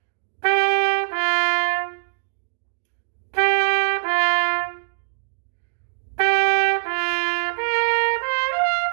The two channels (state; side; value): silent; left; digital silence